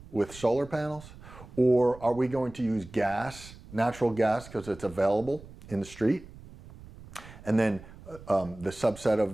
with solar panels? Or are we going to use gas, natural gas, because it's available in the street? And then the subset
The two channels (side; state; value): right; noise; rumble, 18 dB below the sound